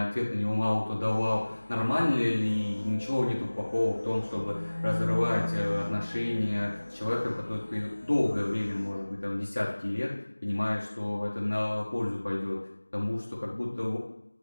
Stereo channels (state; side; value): inverted; both; correlation -1.00